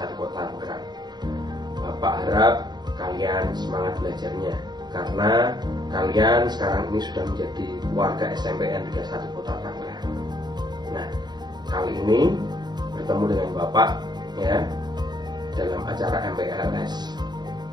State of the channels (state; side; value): late; left; 0.20 ms